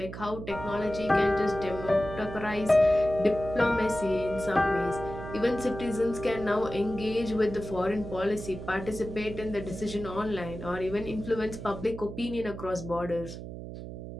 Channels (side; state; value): right; noise; hum, 10 dB below the sound